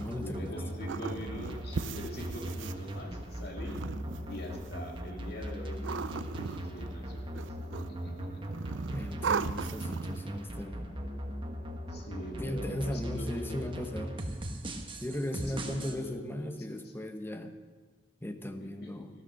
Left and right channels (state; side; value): normal; both; correlation 0.66